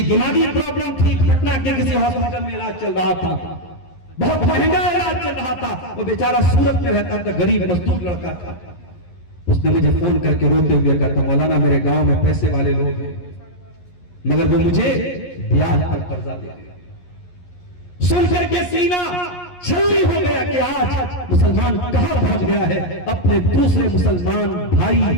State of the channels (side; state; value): right; late; 11 ms